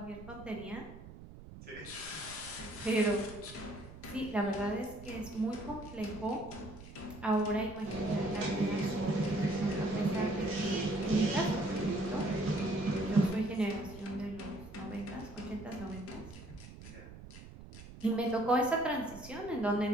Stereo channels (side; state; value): right; noise; rumble, 15 dB below the sound